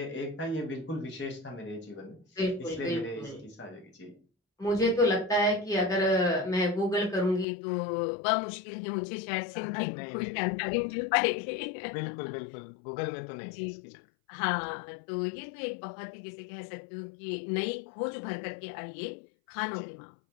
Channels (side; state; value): right; drops out; at 7.5 s